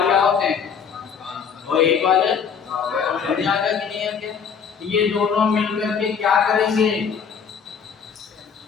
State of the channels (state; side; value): quieter; right; 6.7 dB